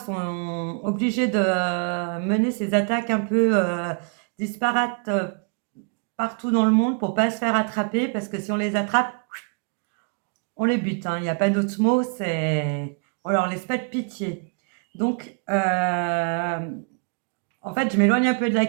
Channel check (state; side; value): quieter; left; 38.1 dB